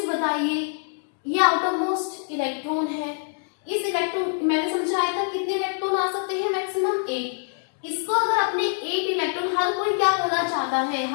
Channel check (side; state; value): right; silent; digital silence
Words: बताइए, ये आउटर मोस्ट इलेक्ट्रॉन है। इस इलेक्ट्रॉन, मैंने समझाया था कितने इलेक्ट्रॉन आ सकते हैं? मैक्सिमम 8। इसको अगर अपने 8 इलेक्ट्रॉन, हर कोई क्या होना चाहता है?